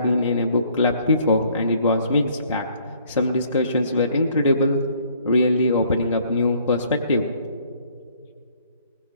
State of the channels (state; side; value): inverted; both; correlation -0.61